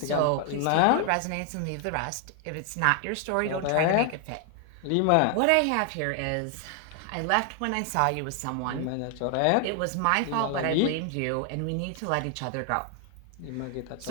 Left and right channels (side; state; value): both; different; correlation 0.00